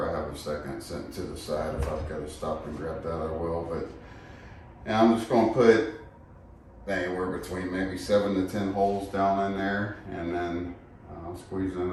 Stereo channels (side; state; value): both; identical; correlation 1.00